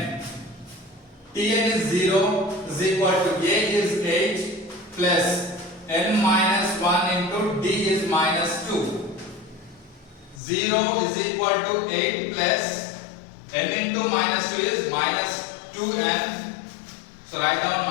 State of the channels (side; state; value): right; drops out; at 10.4 s